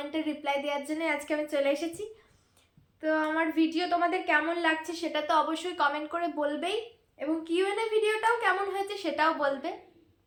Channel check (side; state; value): both; identical; correlation 1.00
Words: রিপ্লাই দেওয়ার জন্য আজকে আমি চলে এসেছি। তো আমার ভিডিও তোমাদের কেমন লাগছে সেটা তো অবশ্যই কমেন্ট করে বলবেই, এবং কিউএনএ ভিডিওটাও কেমন হয়েছে সেটাও বলবে।